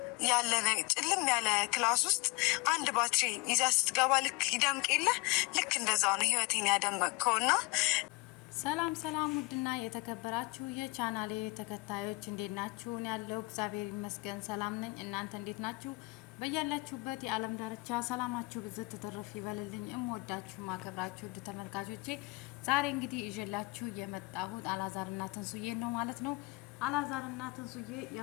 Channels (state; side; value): quieter; right; 25.8 dB